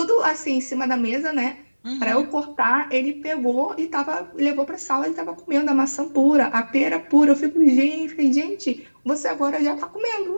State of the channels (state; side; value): inverted; both; correlation -1.00